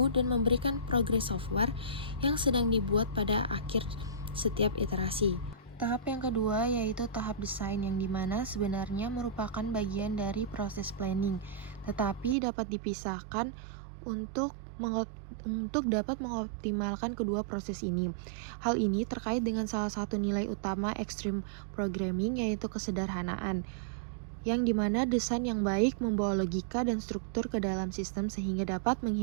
dan memberikan progres software yang sedang dibuat pada akhir setiap iterasi. Tahap yang kedua yaitu tahap desain, yang dimana sebenarnya merupakan bagian dari proses planning, tetapi dapat dipisahkan untuk dapat mengoptimalkan kedua proses ini. Hal ini terkait dengan salah satu nilai utama Extreme Programming, yaitu kesederhanaan, yang dimana desain yang baik membawa logika dan struktur ke dalam sistem sehingga dapat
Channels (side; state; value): left; drops out; at 12.4 s